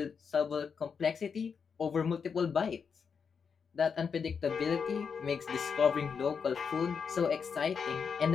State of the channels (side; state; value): right; quieter; 6.2 dB